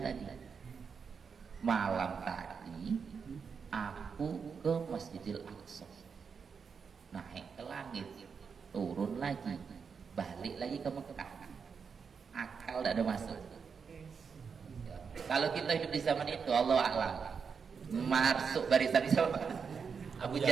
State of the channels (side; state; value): left; quieter; 6.0 dB